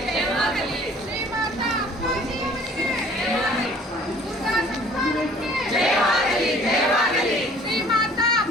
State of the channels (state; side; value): normal; both; correlation 0.53